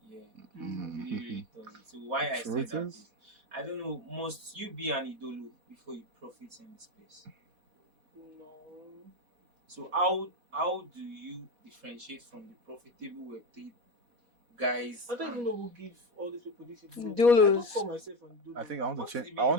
Yeah, really, really toxic. So why I say Truth that is, is, I don't know, must you be an idolo before you profit in the space? No. So how do you differentiate from the profitable Web3 guys? I don't even know who give all these people this idolo thing. I don't Dolos. call myself an I idolo. think I want to What is change. the I meaning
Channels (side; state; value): left; late; 4.1 ms